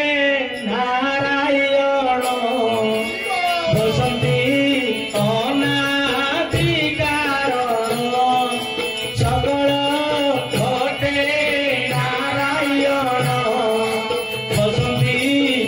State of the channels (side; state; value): both; identical; correlation 1.00